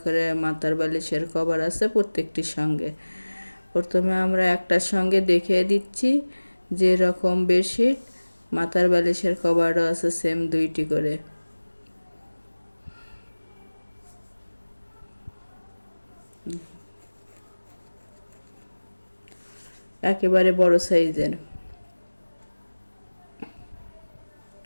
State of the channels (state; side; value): inverted; both; correlation -1.00